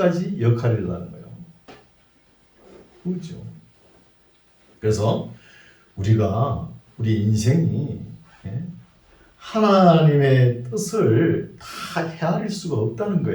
역할을 하는 거예요. 그렇죠. 그래서 우리 인생이 하나님의 뜻을 다 헤아릴 수가 없다는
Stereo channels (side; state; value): both; identical; correlation 1.00